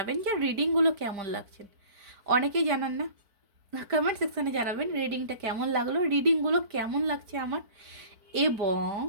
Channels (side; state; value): left; late; 4.5 ms